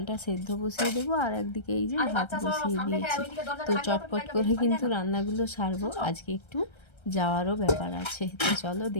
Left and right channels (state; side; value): late; right; 1.3 ms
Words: সেদ্ধ বসিয়ে দেবো, আর একদিকে এই যে ভাত বসিয়ে দিয়েছি। তো চটপট করে কিন্তু রান্নাগুলো সারবো। আজকে একটু যাওয়ারও ব্যাপার আছে, তো চলো